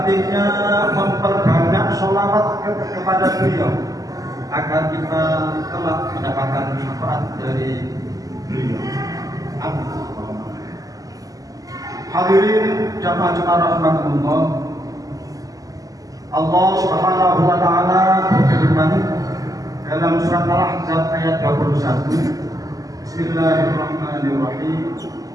memperbanyak sholawat kepada beliau agar kita kelak mendapatkan syafaat dari beliau. Amin. Hadirin jamaah rahimakumullah. Allah Subhanahu wa Ta'ala berfirman dalam surat Al-Ahzab ayat 21. Bismillahirrahmanirrahim.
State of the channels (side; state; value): left; late; 0.17 ms